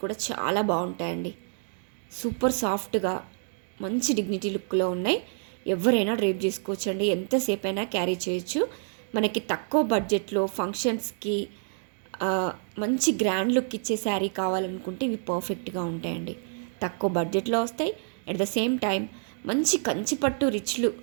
కూడా చాలా బాగుంటాయండి. సూపర్ సాఫ్ట్గా మంచి డిగ్నిటీ లుక్లో ఉన్నాయి. ఎవరైనా డ్రేప్ చేసుకోవచ్చండి. ఎంతసేపు అయినా క్యారీ చేయొచ్చు. మనకి తక్కువ బడ్జెట్లో ఫంక్షన్స్కి మంచి గ్రాండ్ లుక్ ఇచ్చే శారీ కావాలనుకుంటే ఇవి పర్ఫెక్ట్గా ఉంటాయండి. తక్కువ బడ్జెట్లో వస్తాయి. అట్ ద సేమ్ టైం మంచి కంచిపట్టు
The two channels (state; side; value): silent; left; digital silence